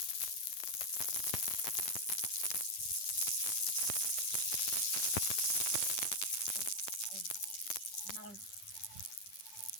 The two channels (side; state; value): right; late; 9.2 ms